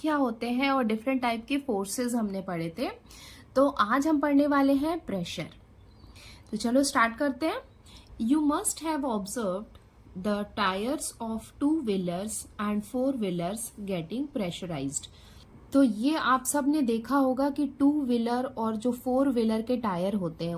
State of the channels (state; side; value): identical; both; correlation 1.00